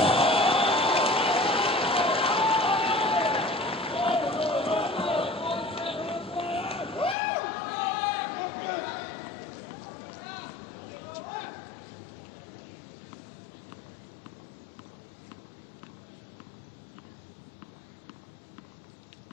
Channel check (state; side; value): drops out; right; at 7.2 s